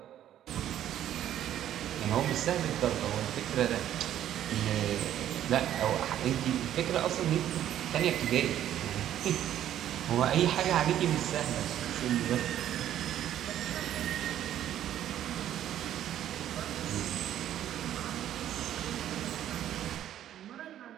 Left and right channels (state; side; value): quieter; left; 11.4 dB